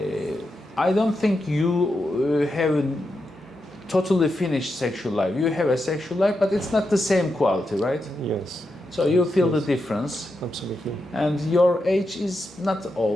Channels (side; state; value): both; normal; correlation 0.86